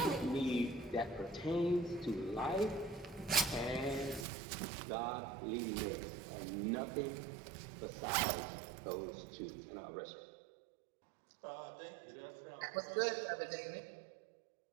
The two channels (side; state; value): left; drops out; at 4.2 s